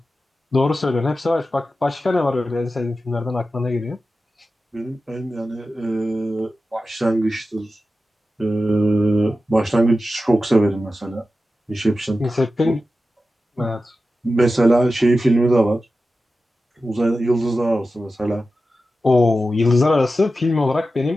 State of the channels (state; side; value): normal; both; correlation 0.93